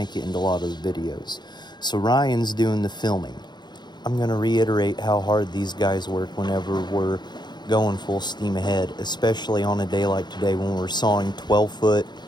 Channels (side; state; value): right; late; 0.21 ms